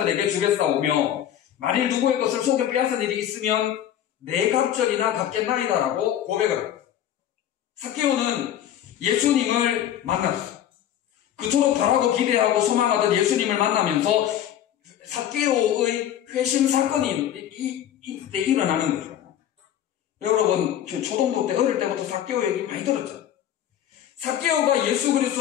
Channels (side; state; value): right; quieter; 10.9 dB